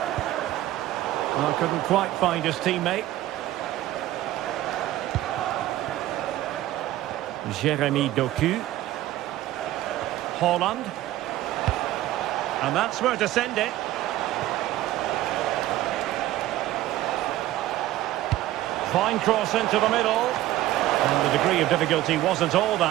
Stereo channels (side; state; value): left; quieter; 14.8 dB